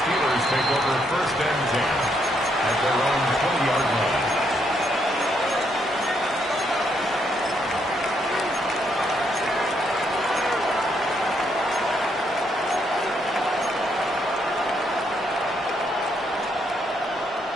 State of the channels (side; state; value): both; normal; correlation 0.75